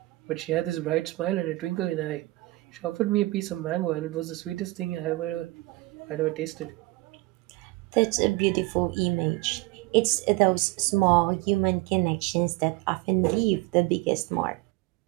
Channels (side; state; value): left; quieter; 20.9 dB